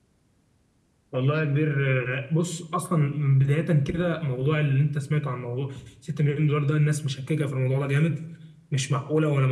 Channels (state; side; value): identical; both; correlation 1.00